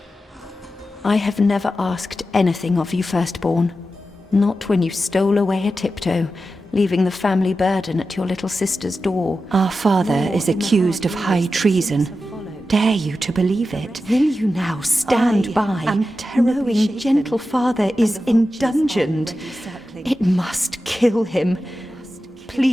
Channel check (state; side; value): normal; both; correlation 0.92